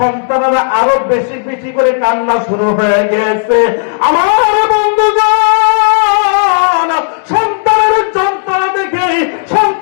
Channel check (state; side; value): silent; right; digital silence